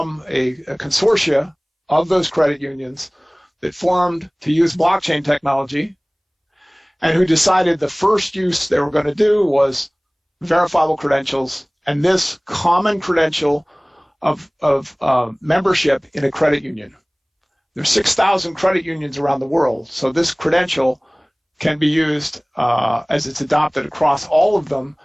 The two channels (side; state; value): both; identical; correlation 1.00